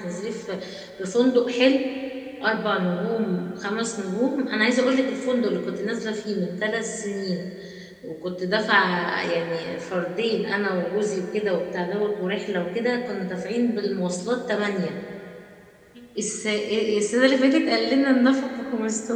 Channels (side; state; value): both; identical; correlation 1.00